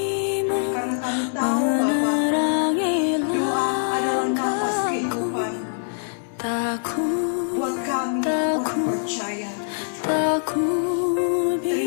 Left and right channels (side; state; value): right; silent; digital silence